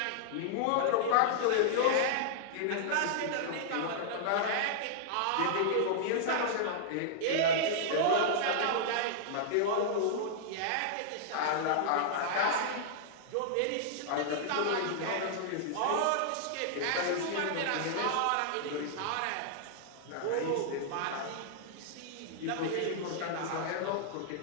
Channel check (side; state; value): both; different; correlation -0.01